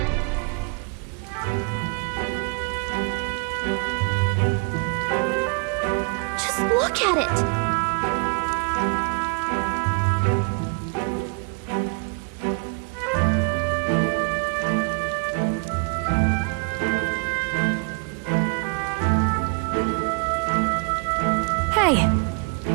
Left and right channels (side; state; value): left; quieter; 34.8 dB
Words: Just look at it! Hey!